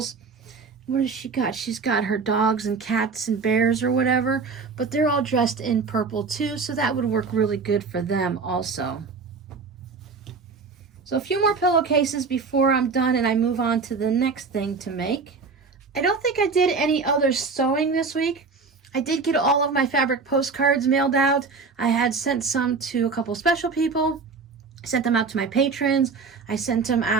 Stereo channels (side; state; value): left; quieter; 4.7 dB